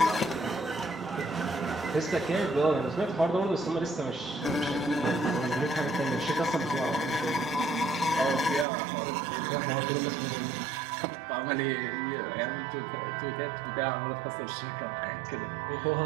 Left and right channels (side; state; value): left; drops out; at 8.7 s